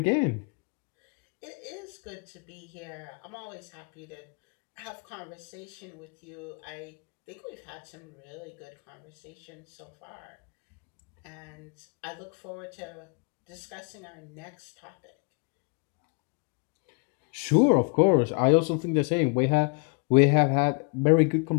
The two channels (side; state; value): right; quieter; 34.1 dB